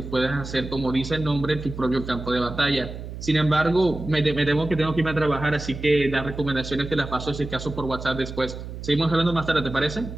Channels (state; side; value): noise; right; hum, 10 dB below the sound